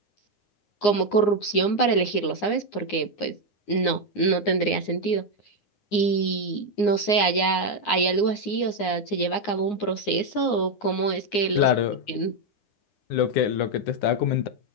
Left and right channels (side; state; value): right; late; 9.7 ms